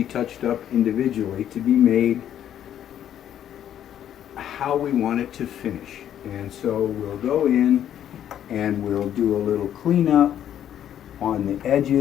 touched up individually to be made how we want it to finish. And so we'll go in and we'll do a little cleanup on the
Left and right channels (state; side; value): quieter; right; 10.4 dB